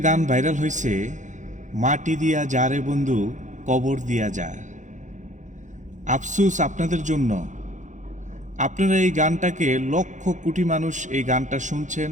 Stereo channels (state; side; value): late; left; 0.36 ms